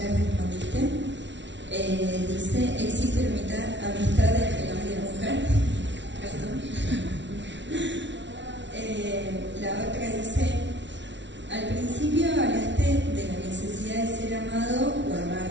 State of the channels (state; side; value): late; left; 0.52 ms